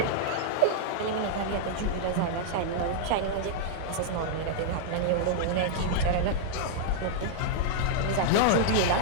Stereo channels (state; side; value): different; both; correlation -0.01